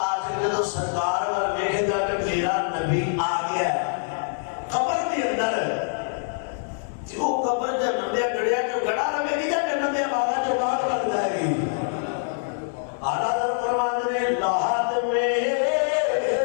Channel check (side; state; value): right; silent; digital silence